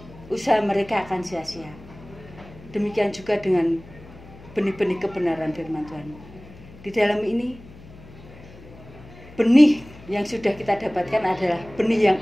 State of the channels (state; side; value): noise; left; hum, 20 dB below the sound